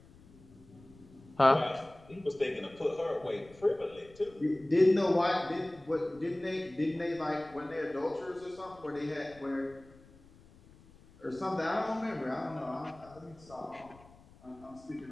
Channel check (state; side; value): noise; left; rumble, 24 dB below the sound